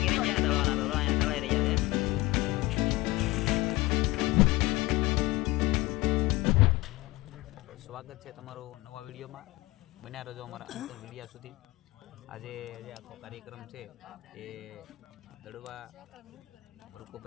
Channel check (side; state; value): right; quieter; 20.7 dB